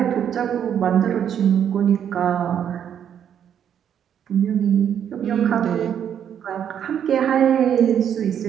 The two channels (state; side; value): quieter; left; 9.0 dB